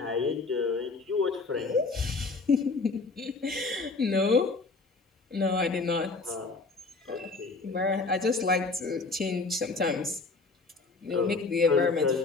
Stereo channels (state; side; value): quieter; right; 3.8 dB